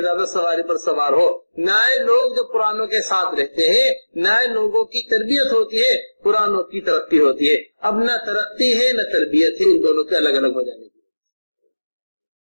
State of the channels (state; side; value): inverted; both; correlation -1.00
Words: سواری پر سوار ہو۔ نئے لوگ جو پرانوں کے ساتھ رہتے ہیں، نئے لوگوں کی تربیت ہوتی ہے، پرانوں کی ترقی ہوتی ہے۔ اب نہ ترقی ہے نہ تربیت ہے، ان دونوں کے الگ الگ ہو جانے کی